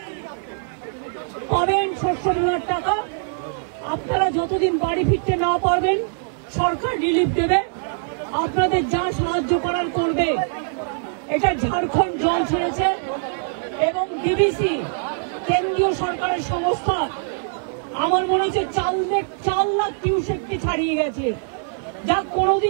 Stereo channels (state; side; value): silent; left; digital silence